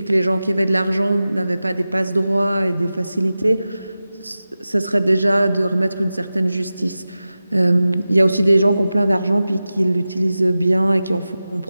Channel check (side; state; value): both; inverted; correlation -0.95